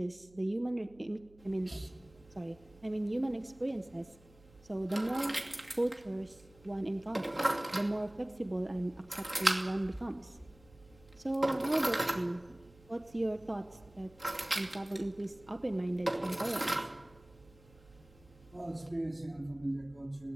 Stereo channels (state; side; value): noise; right; hum, 25 dB below the sound